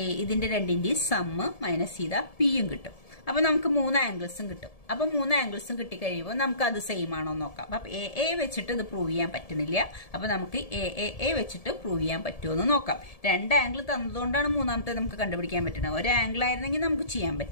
ഇതിന്റെ രണ്ടിന്റെയും സം മൈനസ് ചെയ്താൽ പിയും കിട്ടും. അപ്പൊ നമുക്ക് 3 ആംഗിൾസും കിട്ടും. അപ്പൊ 3 ആംഗിൾസും കിട്ടിക്കഴിയുമ്പോൾ നമുക്ക് അത് സെയിം ആണോ നോക്കാം. അപ്പൊ എ വെച്ചിട്ട് ഇത് പ്രൂവ് ചെയ്യാൻ പറ്റുന്നില്ല. അപ്പൊ നമുക്ക് എ വെച്ചിട്ട് പ്രൂവ് ചെയ്യാൻ പറ്റുമോ എന്ന് നോക്കാം. രണ്ട് ആംഗിൾ തന്നതുകൊണ്ടാണ് മൂന്നാമത്തെ നമുക്ക് കണ്ടുപിടിക്കാൻ പറ്റുന്നത്. ഒരു ആംഗിൾ ആയിരുന്നെങ്കിൽ നമുക്ക് ചെയ്യാൻ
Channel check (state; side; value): late; right; 1.7 ms